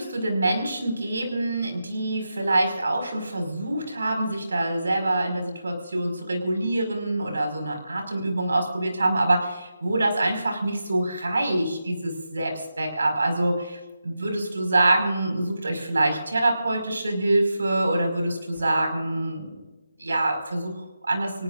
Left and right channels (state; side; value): inverted; both; correlation -0.89